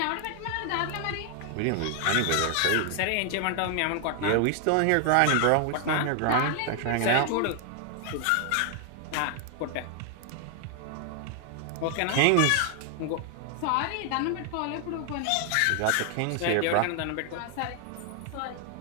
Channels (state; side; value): different; both; correlation 0.00